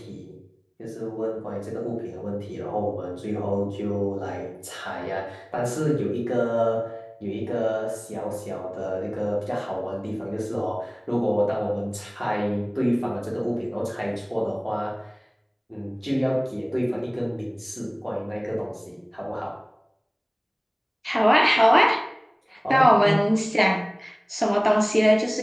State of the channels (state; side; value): identical; both; correlation 1.00